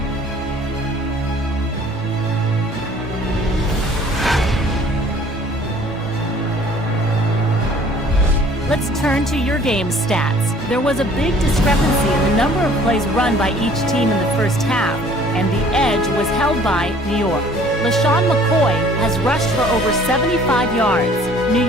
Let's turn to your game stats. There was a big discrepancy in the number of plays run by each team in the first half, and the edge was held by New York. LaShawn McCoy has rushed for over 75 yards. New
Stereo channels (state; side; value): normal; both; correlation 0.54